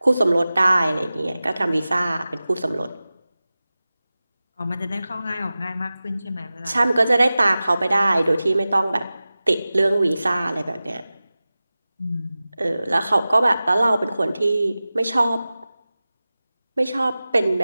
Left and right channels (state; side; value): inverted; both; correlation -0.96